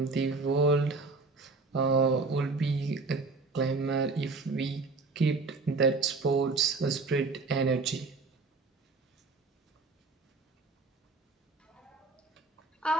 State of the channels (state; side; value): quieter; left; 3.9 dB